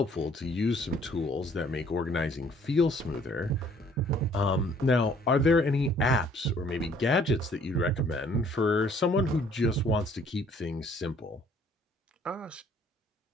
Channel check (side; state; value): both; normal; correlation 0.60